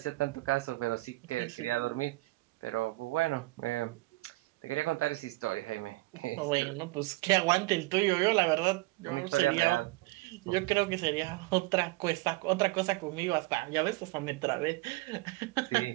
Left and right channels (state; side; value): quieter; left; 21.5 dB